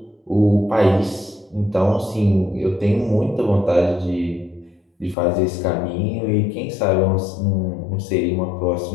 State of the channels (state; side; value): drops out; right; at 5.2 s